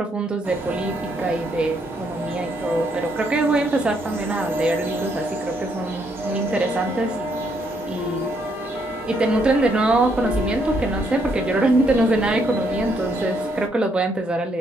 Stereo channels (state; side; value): normal; both; correlation 0.73